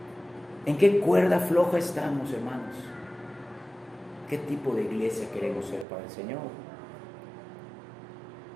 en qué cuerda floja estamos, hermanos. ¿Qué tipo de iglesia queremos ser para el Señor?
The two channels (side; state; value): left; drops out; at 5.9 s